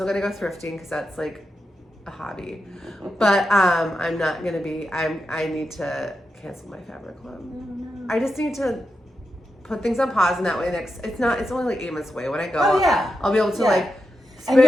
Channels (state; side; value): normal; both; correlation 0.88